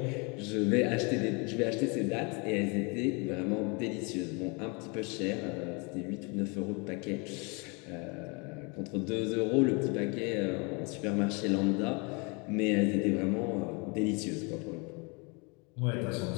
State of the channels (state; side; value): quieter; right; 31.1 dB